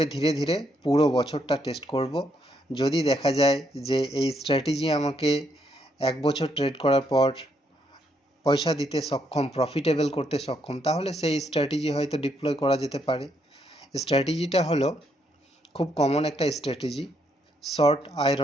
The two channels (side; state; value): both; normal; correlation 0.75